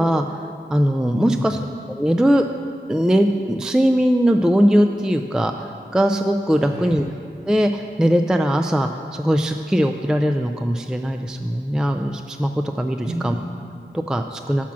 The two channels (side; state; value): both; normal; correlation 0.94